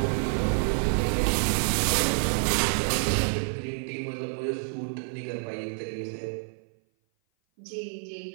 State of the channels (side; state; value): left; silent; 56 dB below the other